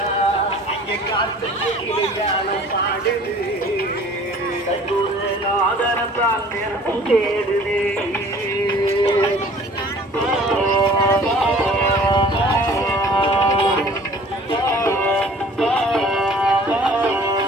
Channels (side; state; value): both; normal; correlation 0.49